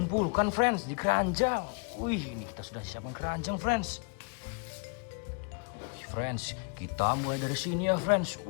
friends di keranjang. Wih, ini kita sudah siapkan keranjang friends. Friends, kita mulai dari sini ya friends.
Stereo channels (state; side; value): quieter; right; 34.3 dB